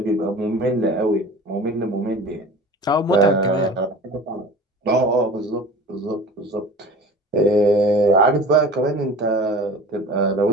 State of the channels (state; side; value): normal; both; correlation 0.39